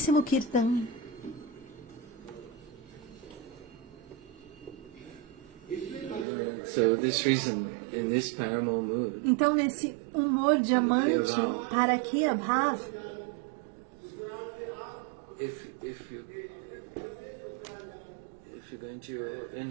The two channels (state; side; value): drops out; left; at 6.2 s